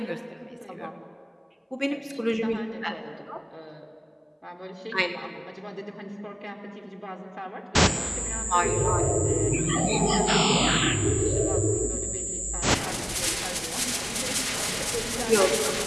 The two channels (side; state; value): both; identical; correlation 1.00